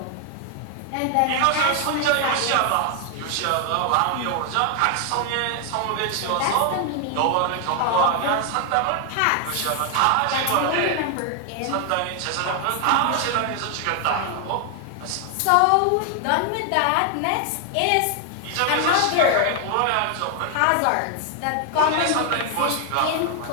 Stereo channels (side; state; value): both; different; correlation 0.00